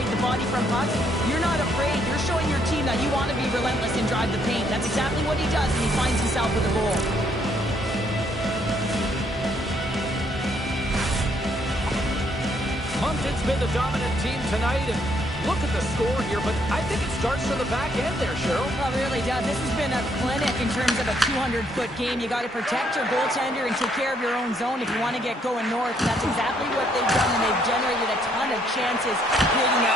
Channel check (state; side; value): normal; both; correlation 0.70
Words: the body from pucks, you're not afraid. You're showing your team that you want to be relentless and drive the paint. That's exactly what he does, and he finds himself with a goal. Moncton's been the dominant team tonight, and look at the score here, but I think it starts from the back end there, Cheryl. Well, it really does. This has been a clinic in terms of a 200-foot game. You got to protect your goaltender and take care of your own zone if you want to get going north. That's exactly what they've done, and they've generated a ton of chances creating their